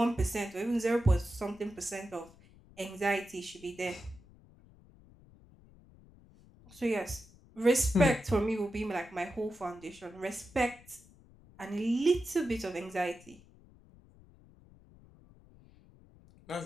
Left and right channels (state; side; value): noise; left; rumble, 24 dB below the sound